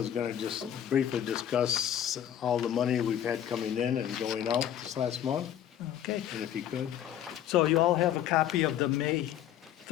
gonna just briefly discuss all the money we've had coming in and going out this last month, Okay. and if he could. So you all have a copy of the May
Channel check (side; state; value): right; quieter; 10.5 dB